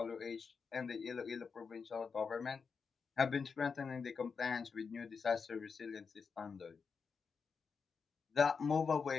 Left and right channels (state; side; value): quieter; right; 5.5 dB